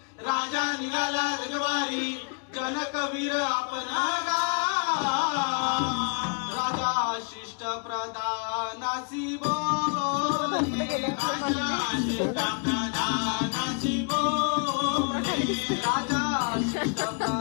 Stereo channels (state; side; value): quieter; right; 37.4 dB